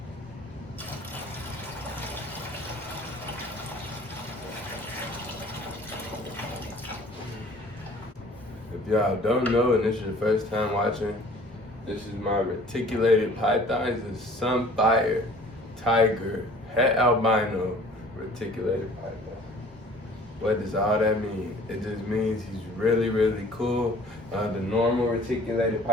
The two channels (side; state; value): both; normal; correlation 0.50